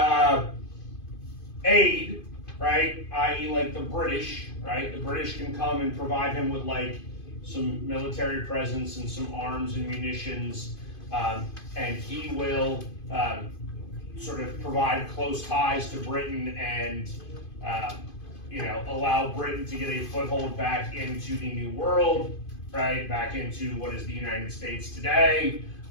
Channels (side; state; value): right; late; 2.5 ms